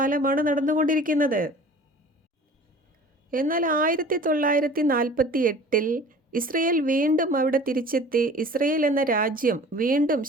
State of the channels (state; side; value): normal; both; correlation 0.44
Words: നടന്നുകൊണ്ടിരിക്കുന്നത്. എന്നാൽ 1948 ഇസ്രയേൽ വീണ്ടും അവിടെ തിരിച്ചെത്തി. ഇസ്രയേൽ എന്ന രാജ്യം വീണ്ടും